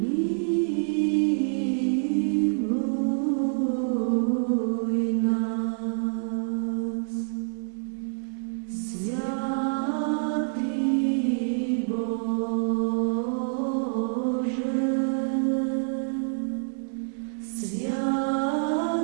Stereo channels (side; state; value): left; silent; digital silence